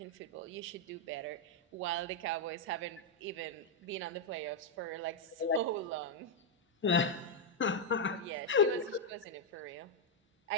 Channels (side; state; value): both; normal; correlation 0.00